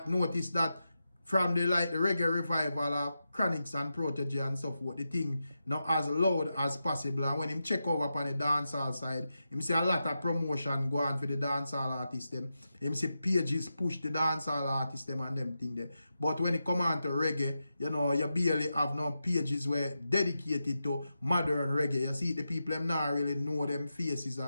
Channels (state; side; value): inverted; both; correlation -0.89